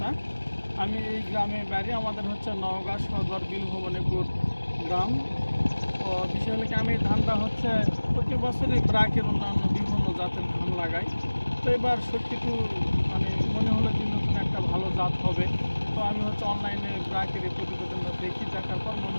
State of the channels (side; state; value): both; inverted; correlation -1.00